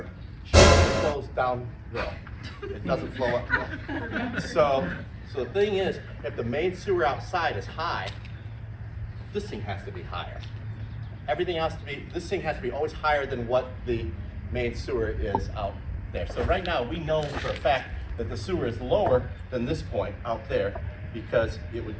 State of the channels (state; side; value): identical; both; correlation 1.00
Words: it flows downhill. It doesn't flow uphill. So the thing is, if the main sewer outside is high, this thing has to be higher. This thing has to be always higher than what the main sewer is out there. So right now, we know for a fact that the sewer is lower than this point out there because it would